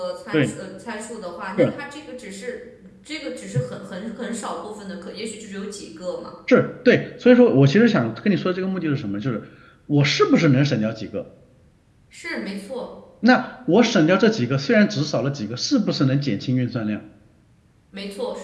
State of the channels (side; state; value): both; identical; correlation 1.00